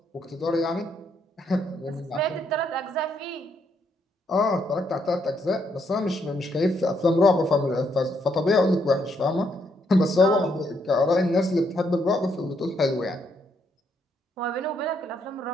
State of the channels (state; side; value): normal; both; correlation 0.74